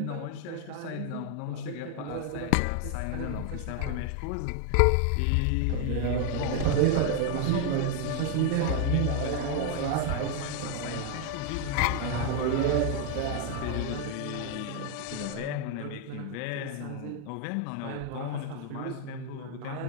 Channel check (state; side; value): different; both; correlation 0.01